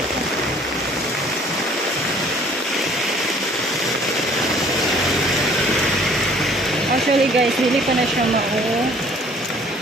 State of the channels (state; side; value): normal; both; correlation 0.55